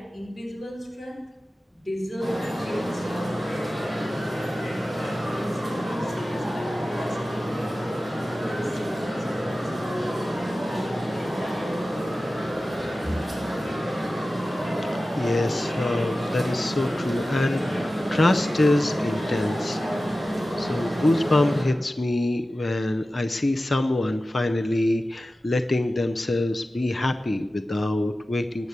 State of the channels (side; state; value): both; normal; correlation 0.95